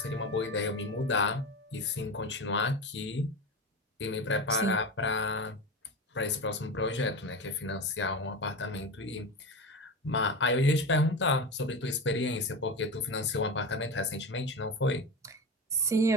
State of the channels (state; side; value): normal; both; correlation 0.23